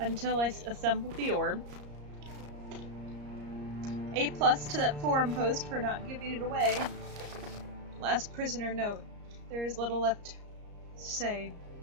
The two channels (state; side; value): late; left; 34 ms